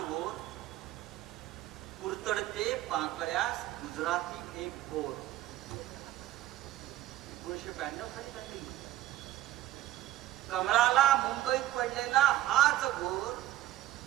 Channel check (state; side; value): quieter; left; 14.3 dB